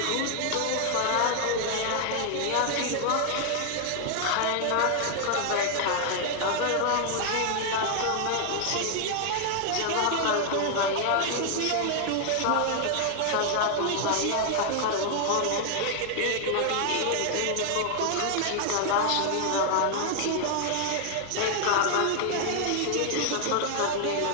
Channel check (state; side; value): different; both; correlation 0.00